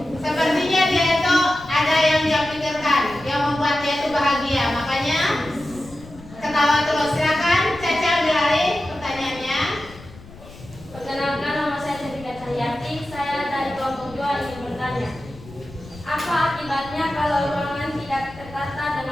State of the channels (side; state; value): left; noise; rumble, 19 dB below the sound